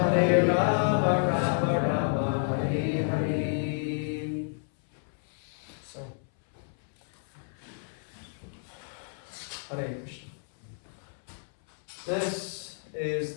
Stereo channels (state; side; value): silent; right; 58 dB below the other